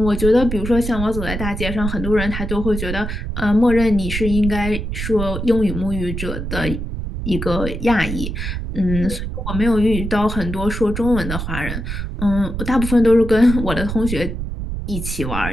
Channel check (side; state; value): right; noise; rumble, 5 dB below the sound